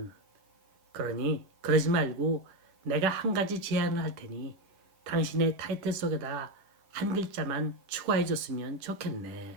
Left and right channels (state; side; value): late; left; 10 ms